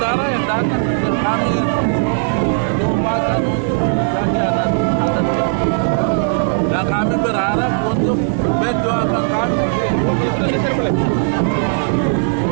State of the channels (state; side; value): silent; left; digital silence